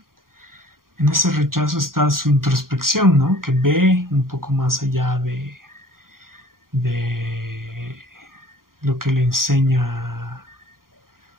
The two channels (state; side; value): late; left; 0.91 ms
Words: en ese rechazo está su introspección, ¿no? Que ve un poco más allá de lo que le enseña